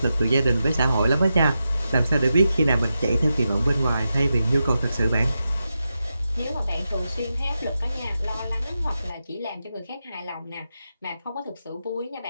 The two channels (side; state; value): both; inverted; correlation -0.89